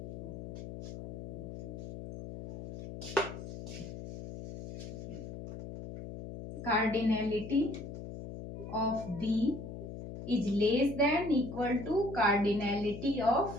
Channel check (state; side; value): noise; left; hum, 9 dB below the sound